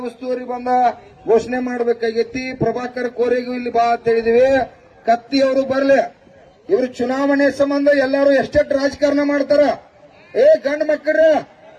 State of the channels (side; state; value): both; identical; correlation 1.00